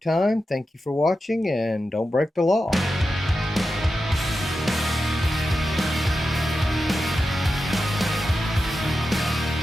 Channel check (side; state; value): both; normal; correlation 0.90